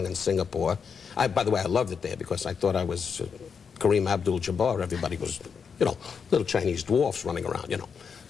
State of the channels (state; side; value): quieter; right; 6.2 dB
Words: and Singapore. By the way, I loved it there because I thought I was Kareem Abdul-Jabbar. Everybody was, you know, little Chinese dwarfs running around, you know.